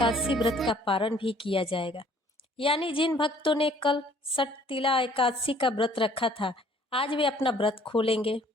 व्रत का पारण भी किया जाएगा। यानी जिन भक्तों ने कल सटतिला एकादशी का व्रत रखा था, आज वे अपना व्रत खोलेंगे।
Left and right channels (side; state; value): both; normal; correlation 0.58